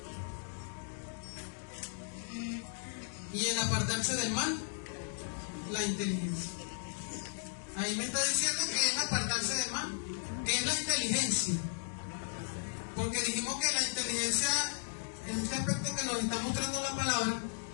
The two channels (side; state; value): right; silent; digital silence